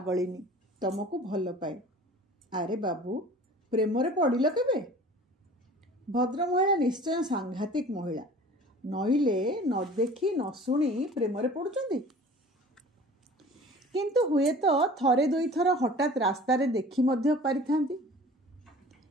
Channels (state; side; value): normal; both; correlation 0.44